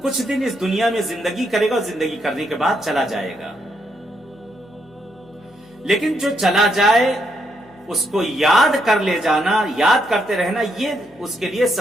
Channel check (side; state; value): left; noise; hum, 30 dB below the sound